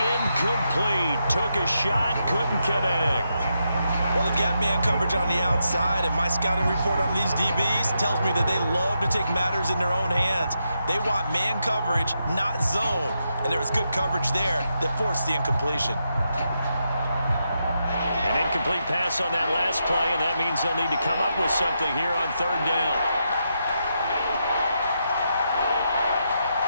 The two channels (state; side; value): inverted; both; correlation -0.83